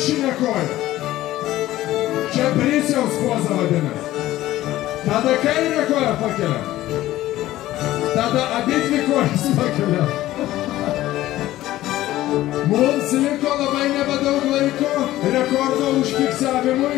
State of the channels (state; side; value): quieter; right; 15.3 dB